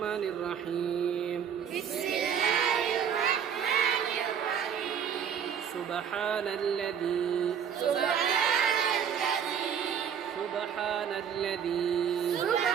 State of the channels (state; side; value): quieter; left; 8.0 dB